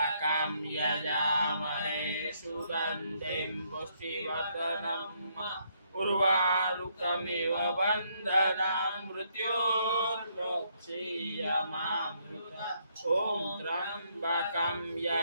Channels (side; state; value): both; inverted; correlation -0.72